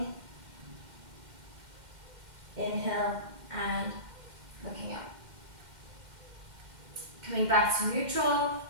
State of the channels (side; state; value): left; late; 2.1 ms